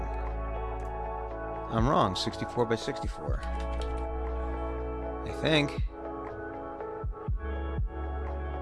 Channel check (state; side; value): identical; both; correlation 1.00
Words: I'm wrong. 64 by 64. I think.